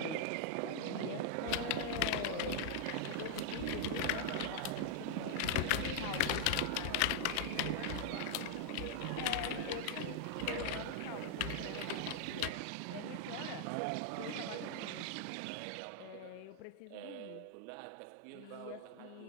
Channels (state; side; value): different; both; correlation 0.00